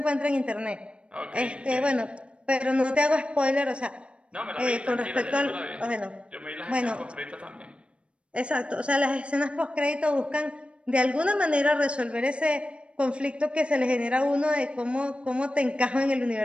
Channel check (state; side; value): late; left; 0.058 ms